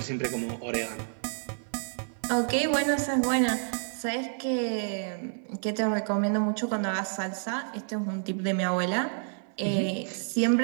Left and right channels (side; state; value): left; silent; 58 dB below the other